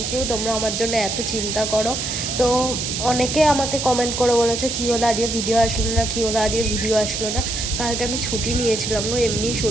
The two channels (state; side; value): noise; right; hiss, 3 dB below the sound